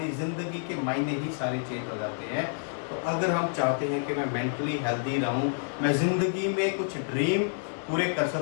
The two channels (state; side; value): silent; right; digital silence